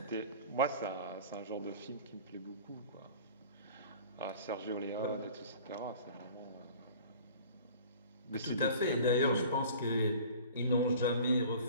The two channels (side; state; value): both; inverted; correlation -0.44